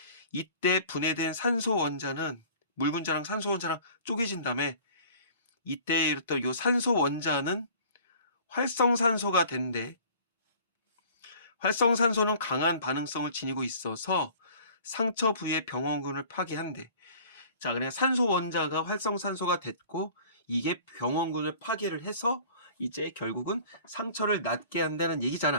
이때 분해된 산소 원자는 물 분자랑 산소 원자랑 쪼개진 다음에 이때 이랬던 요 산소 원자는 활성산소가 된대. 활성산소는 강한 반응성을 지니고 있어서 상처 부위의 병원균을 파괴한대. 자, 그냥 산소 원자가 활성산소가 됐고 이게 병원균을 파괴를 해서 이제 결국은 상처를 낫게 한다는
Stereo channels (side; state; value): both; inverted; correlation -0.48